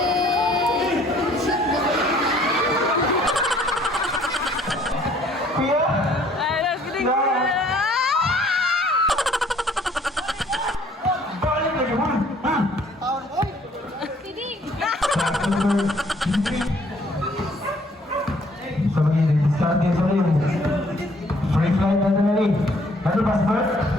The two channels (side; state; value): both; normal; correlation 0.60